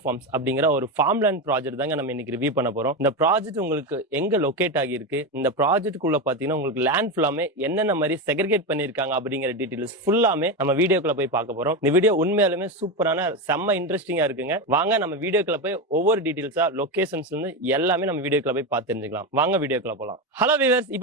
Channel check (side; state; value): both; normal; correlation 0.15